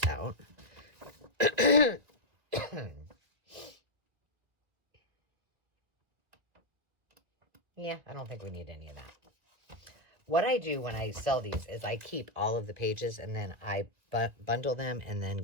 out. Yeah, I don't think we need any of that. What I do when I sell these is I keep all of the pages and then I bundle them and then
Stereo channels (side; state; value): left; late; 1.9 ms